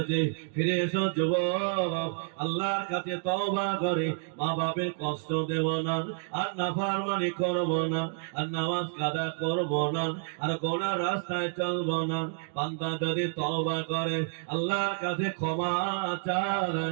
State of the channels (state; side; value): silent; left; digital silence